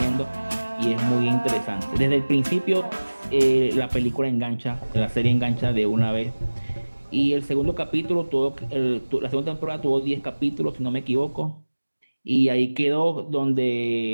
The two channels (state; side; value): inverted; both; correlation -1.00